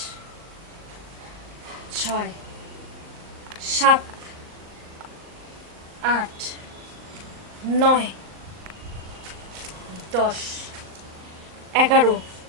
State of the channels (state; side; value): late; left; 39 ms